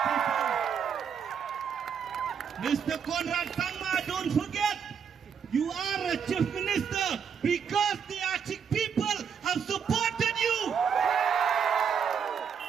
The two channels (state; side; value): quieter; left; 7.1 dB